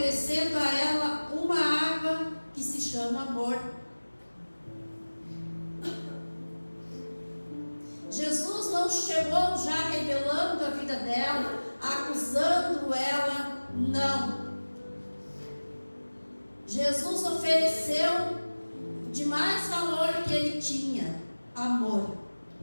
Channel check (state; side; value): inverted; both; correlation -1.00